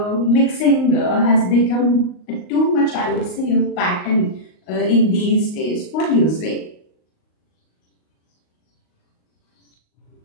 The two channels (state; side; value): late; right; 38 ms